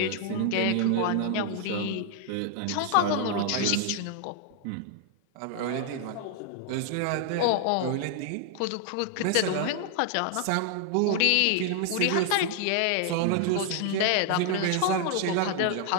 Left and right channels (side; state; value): both; different; correlation 0.00